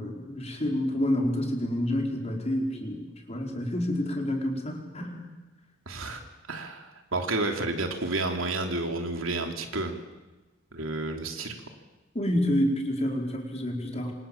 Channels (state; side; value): normal; both; correlation 0.63